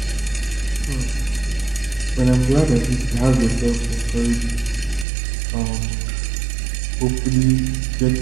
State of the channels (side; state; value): left; drops out; at 5.1 s